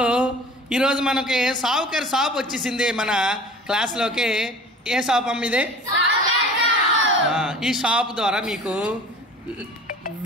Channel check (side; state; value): both; normal; correlation 0.42